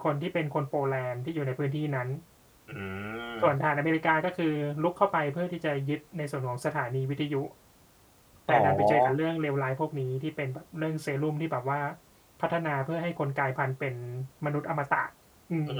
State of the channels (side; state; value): both; identical; correlation 1.00